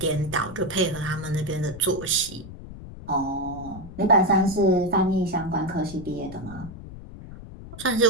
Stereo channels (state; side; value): noise; left; rumble, 14 dB below the sound